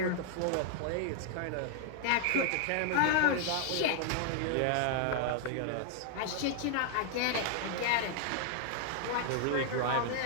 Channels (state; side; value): different; both; correlation -0.01